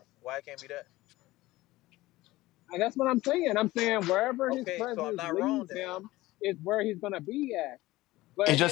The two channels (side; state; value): right; quieter; 18.3 dB